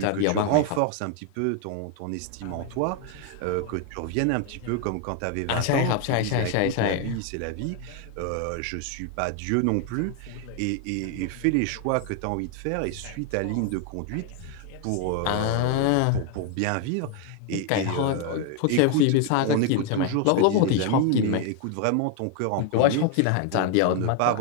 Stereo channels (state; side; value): different; both; correlation 0.00